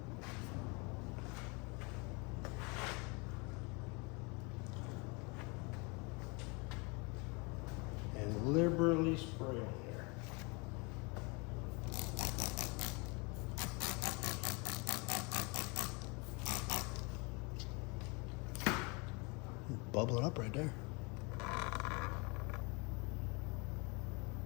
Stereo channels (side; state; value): right; quieter; 30.0 dB